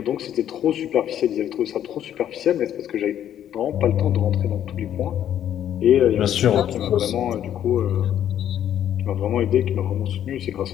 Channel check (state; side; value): quieter; right; 10.6 dB